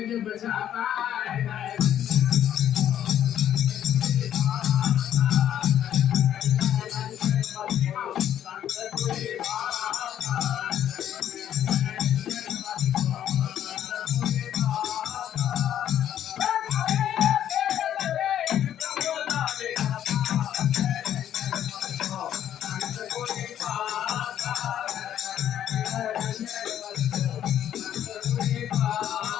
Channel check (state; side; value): quieter; right; 10.7 dB